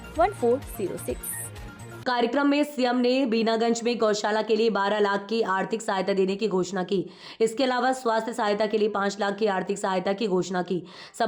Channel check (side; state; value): both; identical; correlation 1.00